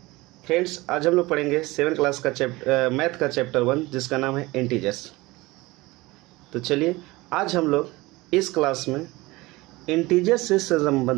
Friends, आज हम लोग पढ़ेंगे 7 क्लास का मैथ का चैप्टर 1 जिसका नाम है इंटीजर्स। तो चलिए आज हम लोग इस क्लास में इंटीजर से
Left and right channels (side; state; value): left; quieter; 21.1 dB